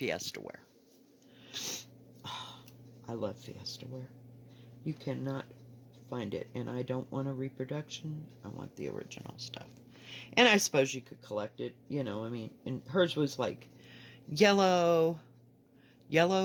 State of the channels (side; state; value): both; identical; correlation 1.00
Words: ware. Oh, I love Fiesta ware. You cannot find it, and I don't want a reproduction. I want the original stuff. And I suppose you could collect it, I mean, and hers was like yellow,